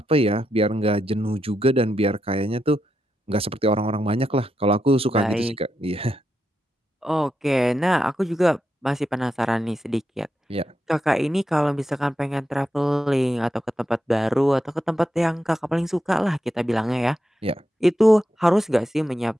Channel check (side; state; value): both; normal; correlation 0.85